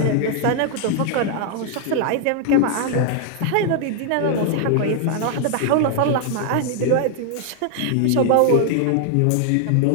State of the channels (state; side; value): different; both; correlation 0.00